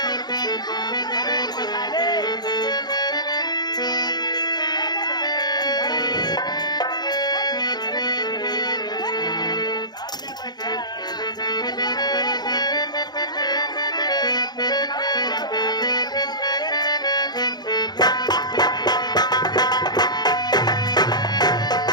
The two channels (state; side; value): late; right; 0.20 ms